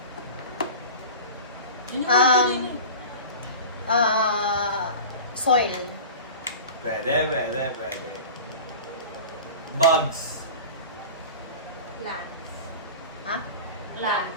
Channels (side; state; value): both; inverted; correlation -0.34